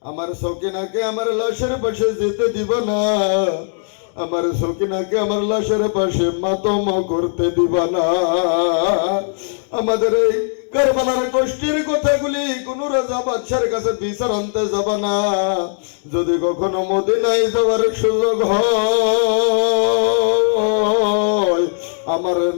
আমার সকিনাকে আমার লাশের পাশে যেতে দিব না, আমার সকিনাকে আমার লাশের পাশে মাতম করতে দিব না। আমাদের এই কারবালার কষ্টের কথাগুলি কোন রাজা বাদশার কাছে বিচার আনতে যাব না, যদি কখনো মদিনায় যাওয়ার সুযোগ হয় আমার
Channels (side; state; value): right; silent; digital silence